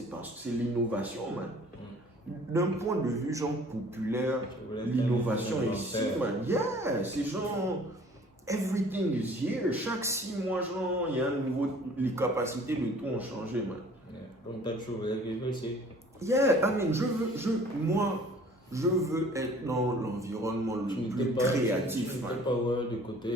parce que c'est l'innovation, man. D'un point de vue genre populaire, l'innovation est ici, man. Yeah, c'est genre, everything is here. Chaque 6 mois, genre, il y a un nouveau, les capacités de tout ont changé, man. Yeah. Donc t'as toujours voulu ici. Yeah, I mean, je veux être dans l'environnement le plus créatif. Tu n'étais pas du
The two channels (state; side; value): normal; both; correlation 0.52